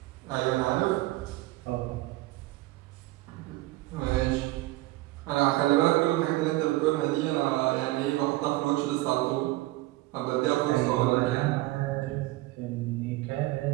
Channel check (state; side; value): quieter; left; 18.9 dB